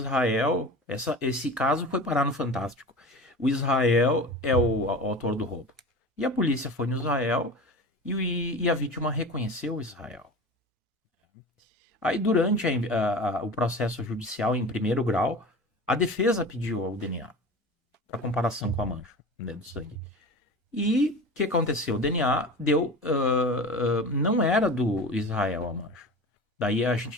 esse caso foi parar no Fantástico. O Israel é o autor do roubo. E a polícia foi no Israel e a vítima reconheceu o Israel. Aí, durante o processo judicial em primeiro grau, a defesa pediu o DNA para comparação com a mancha, né, do sangue. E o que aconteceu? O DNA não era do Israel a mancha. Daí a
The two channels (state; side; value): normal; both; correlation 0.33